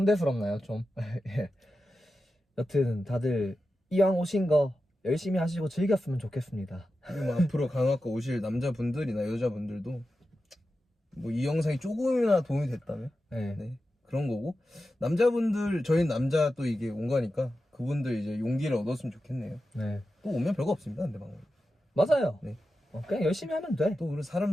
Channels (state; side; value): normal; both; correlation 0.92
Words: 좀? 예. 여튼 다들 이왕 오신 거 열심히 하시고 즐겼으면 좋겠습니다. 그리고 뭐 앞으로 간호학과 오실 남자분들이나 여자분들도 뭐 이 영상이 조금이나 도움이 됐다면 네. 네, 그런 거고 남자분들 저희는 남자 또 이게 온 거니까 그분들 이제 용기를 얻었으면 좋겠네요. 네. 또 오면 별거 없습니다, 근데 방금. 맞아요. 네. 그냥 열심히 하면 돼. 또 우리 사람